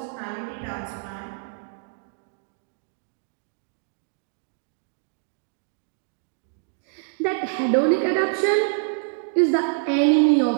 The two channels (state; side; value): silent; left; digital silence